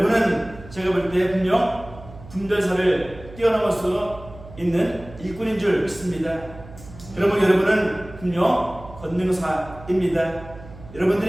제가 볼 때 분명 분별사를 뛰어넘어서 있는 일꾼인 줄 믿습니다. 여러분은 분명 권능사입니다.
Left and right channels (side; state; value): right; noise; hum, 18 dB below the sound